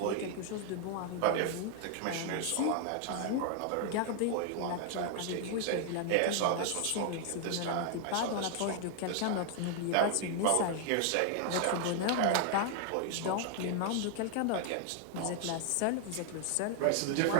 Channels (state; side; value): different; both; correlation 0.00